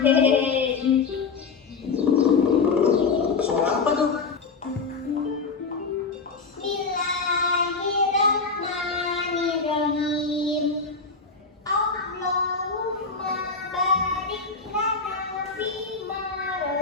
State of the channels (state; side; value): quieter; right; 4.7 dB